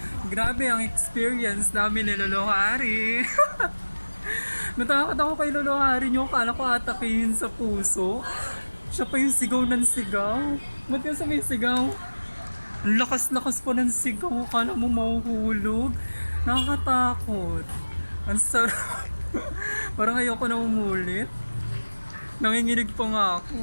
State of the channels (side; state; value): both; inverted; correlation -1.00